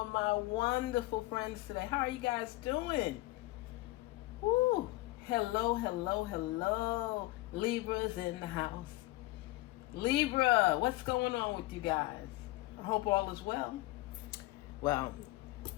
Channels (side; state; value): right; quieter; 19.6 dB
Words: my wonderful friends today? How are you guys doing? Woo! Hello, hello, hello. Libras in the house. Libra, what's going on with you guys? I hope all is well. Well,